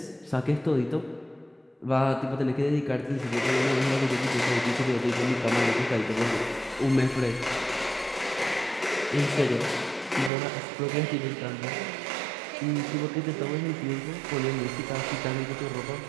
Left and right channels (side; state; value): left; drops out; at 10.3 s